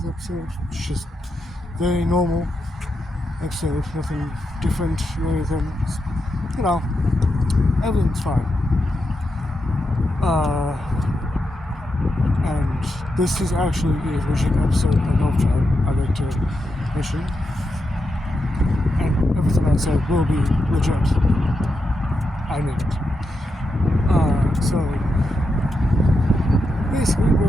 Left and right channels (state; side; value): normal; both; correlation 0.86